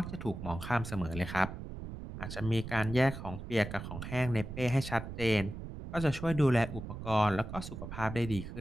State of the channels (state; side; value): noise; right; rumble, 9 dB below the sound